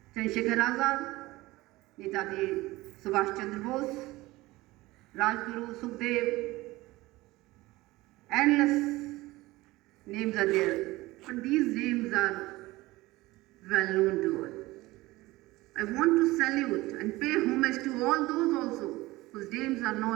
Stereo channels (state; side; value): quieter; left; 19.5 dB